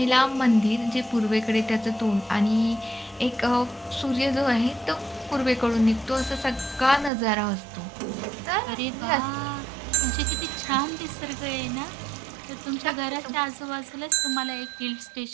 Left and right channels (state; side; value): drops out; left; at 7.1 s